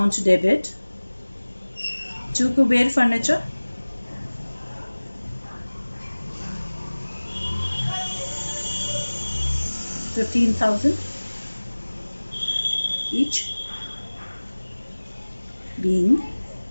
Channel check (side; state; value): both; inverted; correlation -1.00